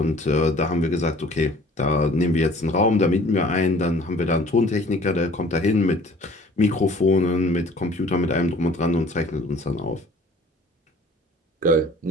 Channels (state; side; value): normal; both; correlation 0.52